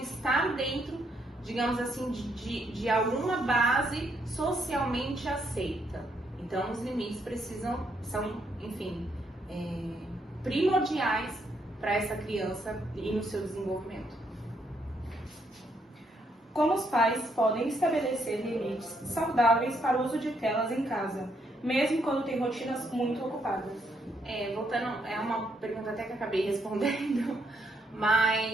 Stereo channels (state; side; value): normal; both; correlation 0.74